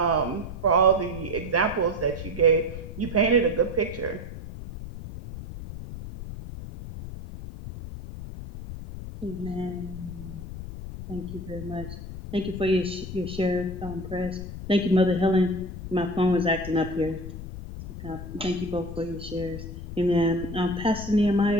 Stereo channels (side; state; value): left; noise; rumble, 10 dB below the sound